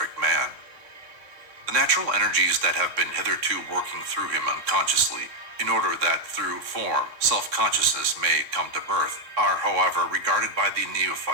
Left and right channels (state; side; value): late; left; 3.6 ms